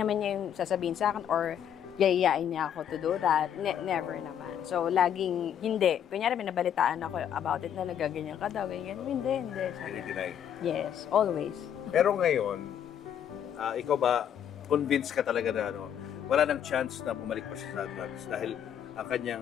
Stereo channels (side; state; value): right; quieter; 9.3 dB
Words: yung sasabihin sa akin or yayayain niya ako to do that. Never naman. So, laging hindi. Kunyari, may nabalitaan ako about it na nagaganyan ka daw. Ganyan. Hindi. Hindi. Yes, always. Pero ngayon, ikaw ba, convinced ka talaga na wala nang chance na bumalik pa siya sa drugs dahil ang